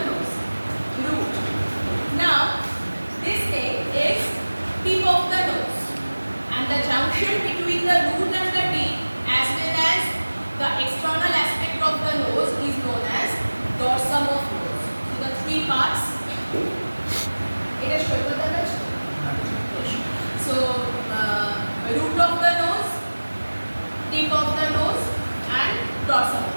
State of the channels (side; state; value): both; inverted; correlation -1.00